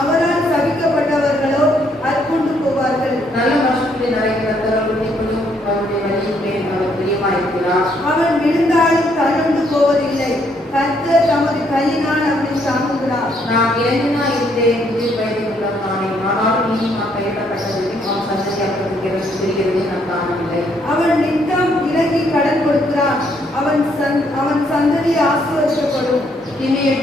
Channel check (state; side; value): normal; both; correlation 0.70